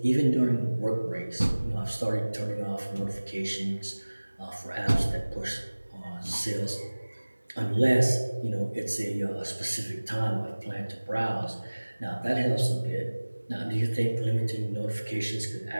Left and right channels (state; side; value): inverted; both; correlation -1.00